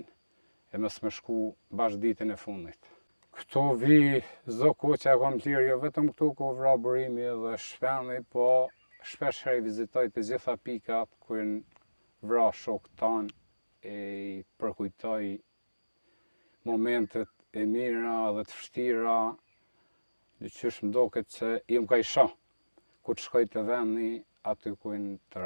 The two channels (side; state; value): both; inverted; correlation -1.00